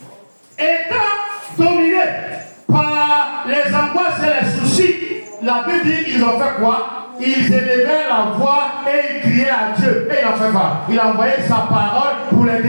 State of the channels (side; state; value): both; inverted; correlation -1.00